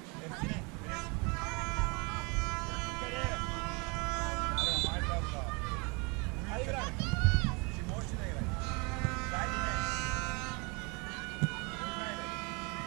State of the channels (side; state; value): left; quieter; 30.3 dB